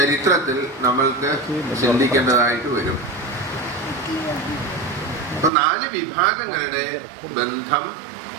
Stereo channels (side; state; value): left; drops out; at 5.5 s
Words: നമ്മൾക്ക് ചിന്തിക്കേണ്ടതായിട്ട് വരും. അപ്പൊ 4 വിഭാഗങ്ങളുടെ ബന്ധം